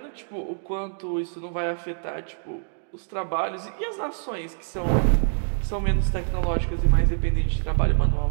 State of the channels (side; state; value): left; silent; digital silence